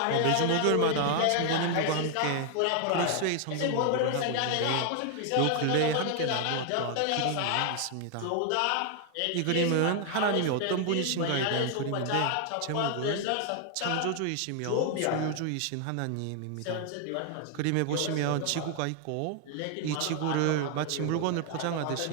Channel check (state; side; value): different; both; correlation 0.00